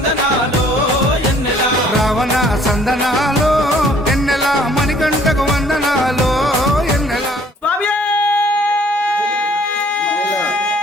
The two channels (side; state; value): both; normal; correlation 0.58